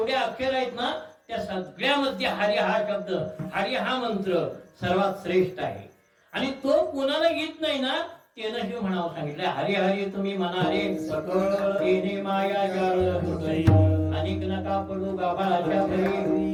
अक्षर आहेत ना त्या सगळ्यामध्ये हरी हा शब्द, हरी हा मंत्र सर्वात श्रेष्ठ आहे. आणि तो कोणाला येत नाही ना त्यानं हे म्हणावं सांगितलं, हरी हरी तुम्ही म्हणा रे सकळ तेने माया जाळ होतय अनेक नका पडू गाभाळाच्या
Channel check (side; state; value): both; identical; correlation 1.00